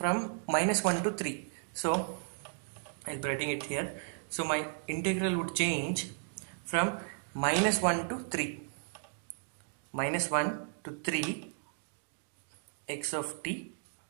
minus 1 to 3. So, I'll be writing it here. So, my integral would change from minus 1 to 3. Minus 1 to 3 x of t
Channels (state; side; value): silent; left; digital silence